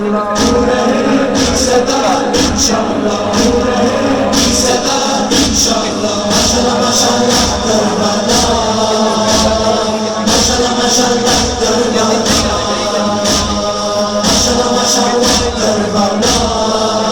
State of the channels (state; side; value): identical; both; correlation 1.00